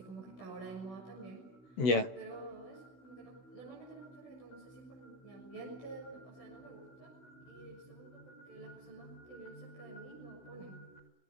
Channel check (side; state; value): right; late; 16 ms